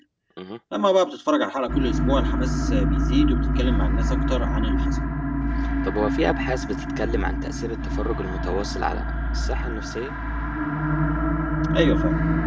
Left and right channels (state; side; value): identical; both; correlation 1.00